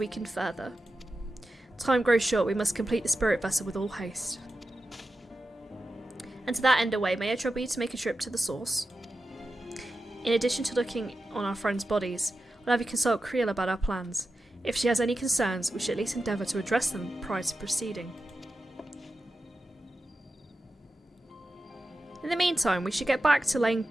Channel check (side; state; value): both; normal; correlation 0.91